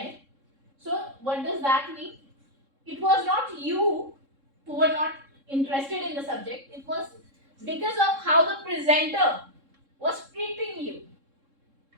So, what does that mean? It was not you who were not interested in the subject, it was because of how the presenter was treating you.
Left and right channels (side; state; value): left; late; 3.7 ms